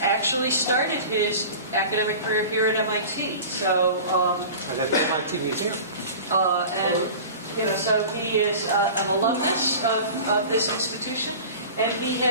actually started his academic career here at MIT. So, and at the MIT Museum. And you know, so he is an alumnus of this institution, and he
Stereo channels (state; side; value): inverted; both; correlation -0.37